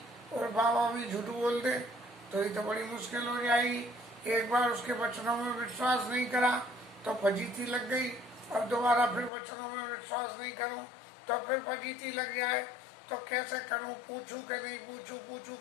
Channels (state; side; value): drops out; right; at 9.3 s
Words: और बाबा भी झूठ बोल दे तो ये तो बड़ी मुश्किल हो जाएगी। एक बार उसके वचनों में विश्वास नहीं करा तो फजीती लग गई, अब दोबारा फिर वचनों में विश्वास नहीं करूं तो फिर फजीती लग जाए, तो कैसे करूं, पूछूं कि नहीं पूछूं, पूछूं